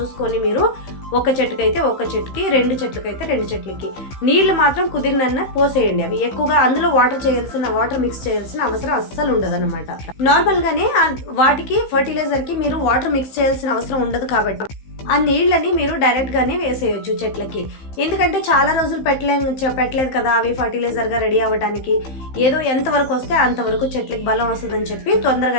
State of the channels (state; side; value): late; right; 15 ms